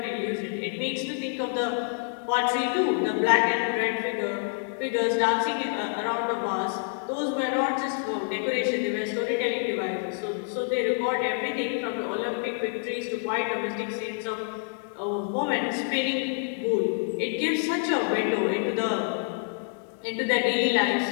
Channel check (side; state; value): right; silent; 60 dB below the other